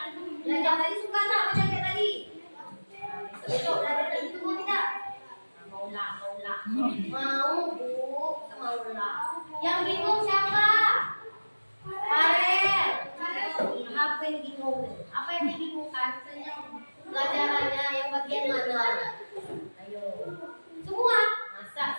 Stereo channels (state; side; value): inverted; both; correlation -1.00